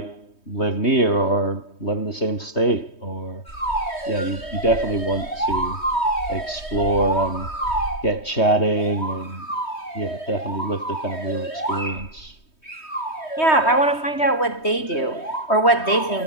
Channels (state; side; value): late; right; 3.2 ms